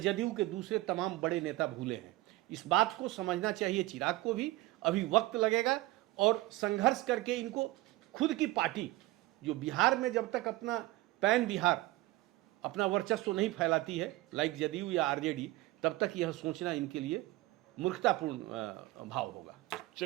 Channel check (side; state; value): left; quieter; 18.3 dB